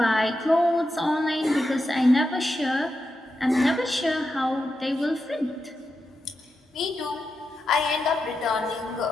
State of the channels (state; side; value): normal; both; correlation 0.88